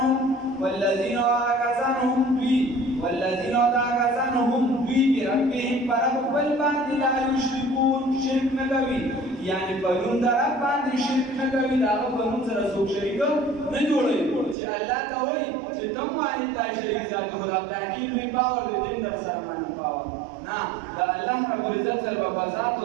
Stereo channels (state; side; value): drops out; left; at 14.6 s